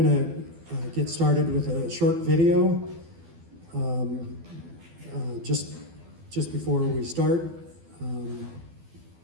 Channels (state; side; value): late; left; 12 ms